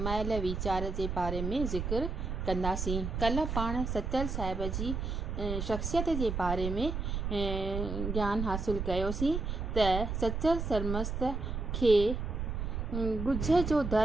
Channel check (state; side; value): noise; right; rumble, 3 dB below the sound